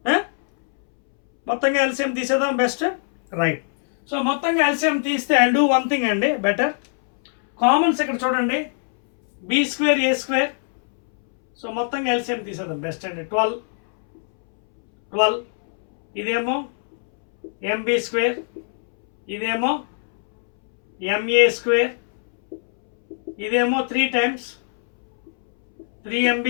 మొత్తంగా ఎల్సిఎం తీసేద్దాం, బెస్ట్, రైట్. సో మొత్తంగా ఎల్సిఎం తీస్తే ఐ డూ వన్ థింగ్ అండి, బెటర్. కామన్స్ ఇక్కడ చూడండి, B square A square. So మొత్తంగా ఎల్సిఎం తీసేద్దాం, బెస్ట్ అండి. 12 ఇదేమో MB స్క్వేర్, ఇదేమో MA స్క్వేర్, ఇదేమో 3 times 3MB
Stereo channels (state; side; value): silent; right; 65 dB below the other